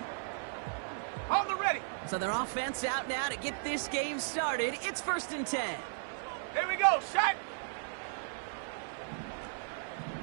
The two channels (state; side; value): silent; left; 54 dB below the other